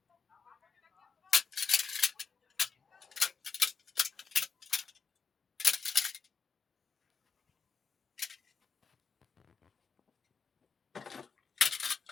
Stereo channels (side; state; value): right; quieter; 5.5 dB